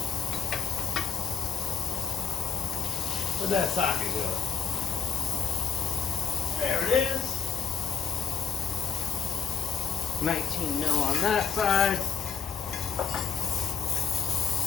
Where'd that socket go? There it is. 19 mil on that side.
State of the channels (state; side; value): quieter; right; 7.0 dB